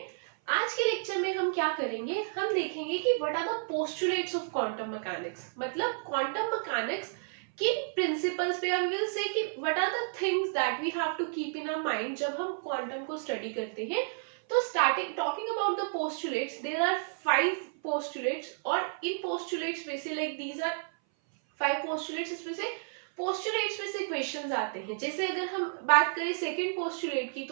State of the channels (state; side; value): silent; left; 57 dB below the other